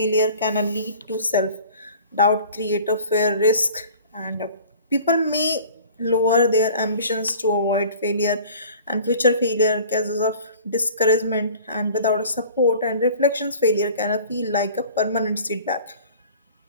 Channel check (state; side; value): inverted; both; correlation -0.46